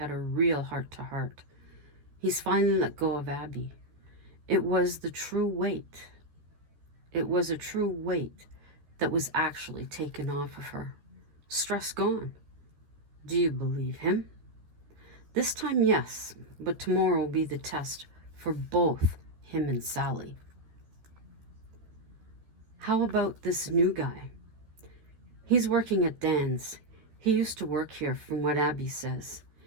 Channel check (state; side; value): late; left; 13 ms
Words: a real heart-to-heart. He's finally let go of Abby. It was a true weight that was actually taken off of her. Stress gone. Do you believe him? This time, yes, but tomorrow will be the test for both him and Sally. How about this new guy? He's working at Dan's. He used to work here, from what Abby says.